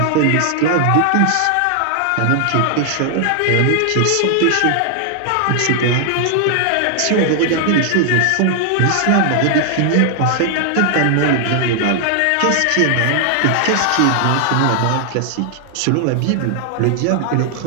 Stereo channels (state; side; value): different; both; correlation 0.00